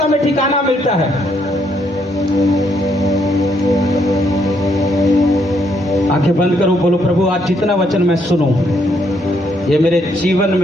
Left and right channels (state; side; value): normal; both; correlation 0.73